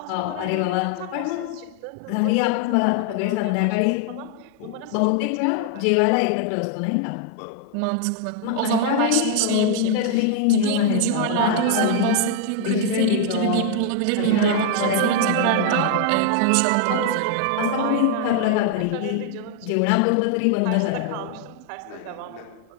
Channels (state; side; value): different; both; correlation 0.00